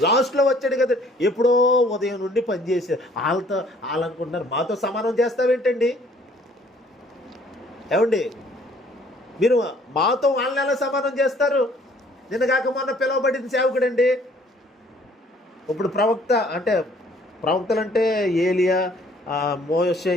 లాస్ట్లో వచ్చాడు కదా, ఎప్పుడో ఉదయం నుండి పనిచేసారు. వాళ్ళు అనుకుంటున్నారు మాతో సమానం చేస్తావేంటండి? ఏమండి, మీరు మాతో వాళ్ళని ఎలా సమానం చేస్తారు? నిన్న కాక మొన్న పిలువబడిన సేవకుడండి. ఇప్పుడు ప్రవక్తలు అంటే ఏలియా, మోషే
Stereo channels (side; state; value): both; normal; correlation 0.59